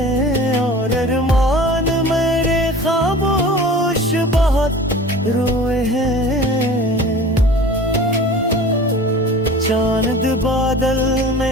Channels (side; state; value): both; normal; correlation 0.41